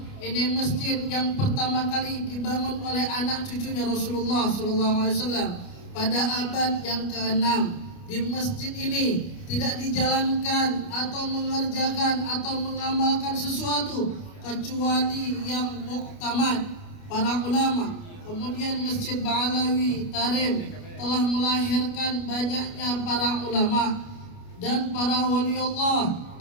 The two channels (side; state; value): right; late; 29 ms